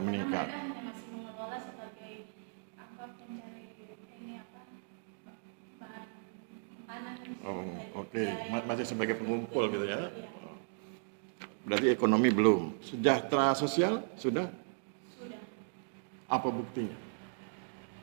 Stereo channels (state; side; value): silent; left; digital silence